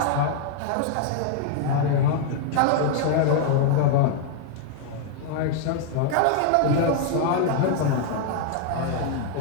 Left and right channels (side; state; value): both; different; correlation 0.00